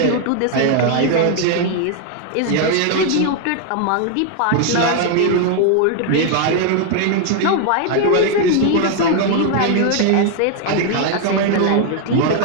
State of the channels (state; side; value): different; both; correlation 0.00